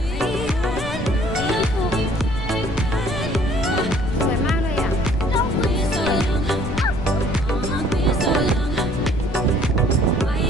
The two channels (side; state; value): left; noise; rumble, 9 dB below the sound